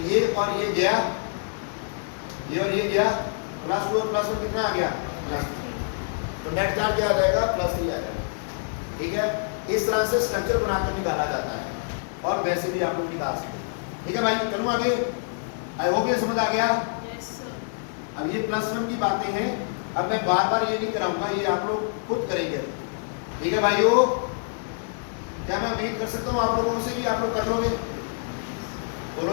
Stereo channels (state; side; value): silent; right; digital silence